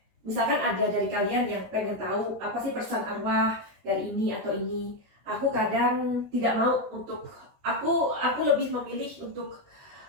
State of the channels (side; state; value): left; late; 13 ms